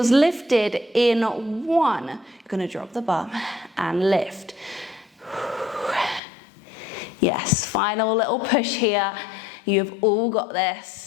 lifted in 1. You're going to drop the bum and lift. Yes, final little push here. You've all got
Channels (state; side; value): drops out; right; at 6.2 s